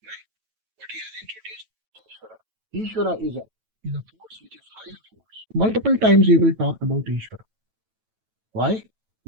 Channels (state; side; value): late; left; 9.1 ms